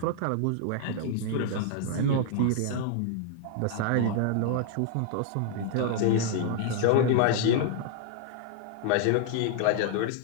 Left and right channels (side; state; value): both; different; correlation -0.01